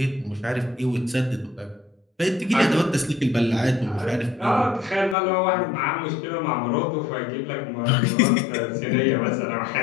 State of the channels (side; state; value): right; drops out; at 5.2 s